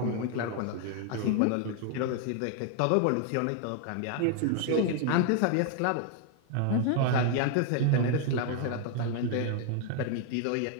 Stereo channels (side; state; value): both; different; correlation 0.00